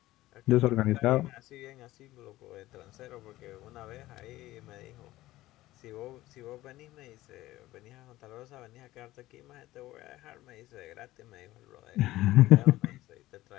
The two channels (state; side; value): quieter; right; 16.6 dB